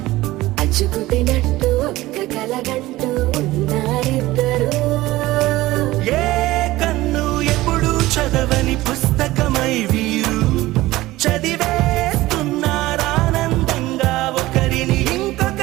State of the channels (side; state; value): left; quieter; 17.7 dB